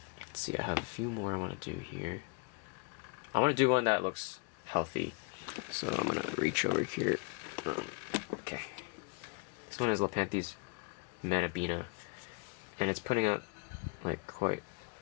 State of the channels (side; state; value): right; quieter; 32.0 dB